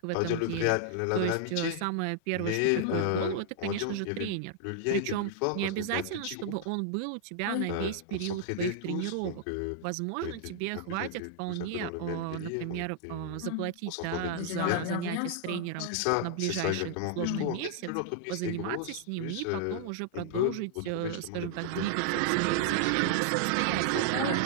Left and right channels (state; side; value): different; both; correlation -0.01